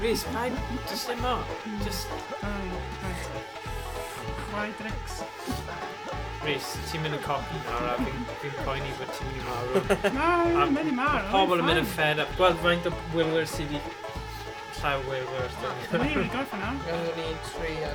paid, just ddim o. Just... Right. Quadrix. Reese, ti'n mynd yn copi nawr a fi'n poeni bod ti'n mynd I marw. No, mae'n mynd I marw. Pobl yn mynd yn fed up. Gweld faint o wylwyr sydd wedi llaw wylwyr. Mae'n i wedi gorffen nawr. I'm gonna need 3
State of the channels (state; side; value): identical; both; correlation 1.00